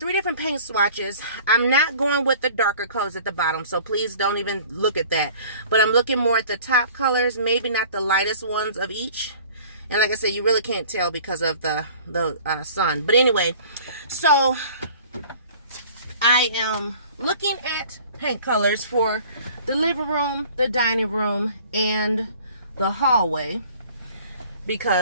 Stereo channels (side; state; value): both; inverted; correlation -0.48